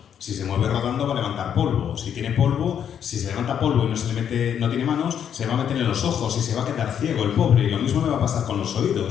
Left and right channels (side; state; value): right; quieter; 8.7 dB